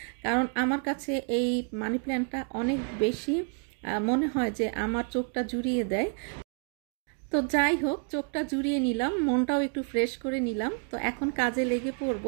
কারণ আমার কাছে এই মানি প্ল্যান্টটা অনেক বেশি মনে হয় যে আমার চোখটা জুড়িয়ে দেয়। তো যাই হোক, চোখটা জুড়িয়ে নিলাম, মনটাও একটু ফ্রেশ করে নিলাম। তো এখন কাজে লেগে পড়ব।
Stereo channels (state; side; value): quieter; left; 39.1 dB